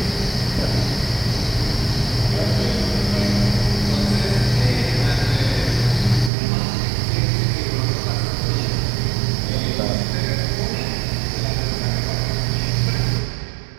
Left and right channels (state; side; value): drops out; left; at 6.3 s